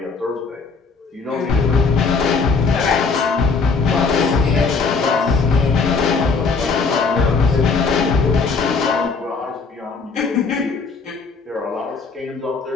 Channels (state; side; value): quieter; right; 4.6 dB